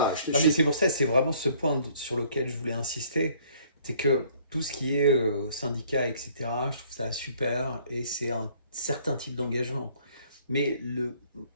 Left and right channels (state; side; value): inverted; both; correlation -0.60